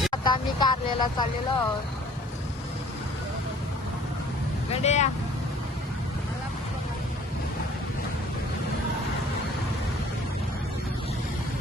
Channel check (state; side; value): normal; both; correlation 0.53